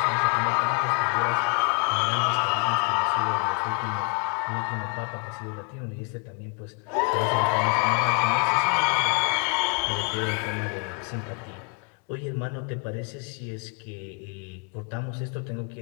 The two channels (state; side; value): quieter; right; 34.4 dB